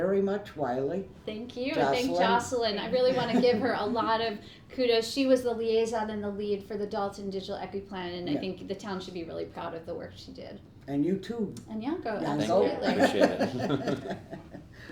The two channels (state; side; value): identical; both; correlation 1.00